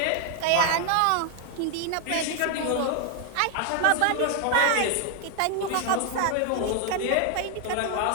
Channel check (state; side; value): different; both; correlation 0.00